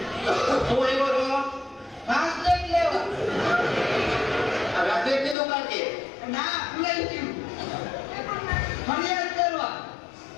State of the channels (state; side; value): drops out; right; at 5.4 s